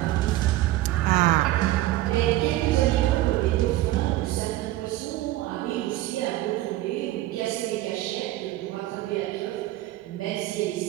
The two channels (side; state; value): left; quieter; 16.1 dB